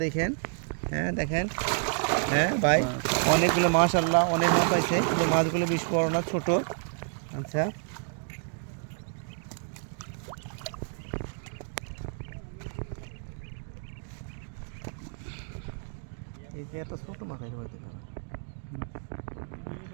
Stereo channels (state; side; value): silent; left; 56 dB below the other